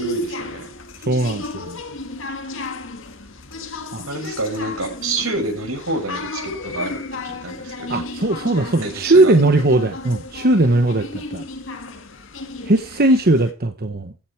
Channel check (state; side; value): normal; both; correlation 0.44